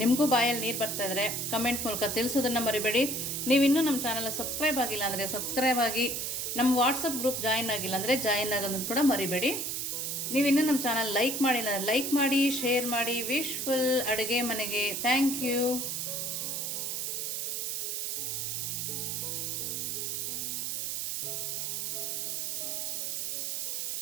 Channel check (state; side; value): noise; right; hiss, 2 dB below the sound